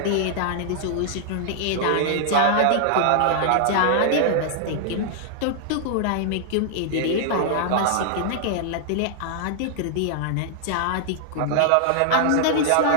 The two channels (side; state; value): both; different; correlation -0.01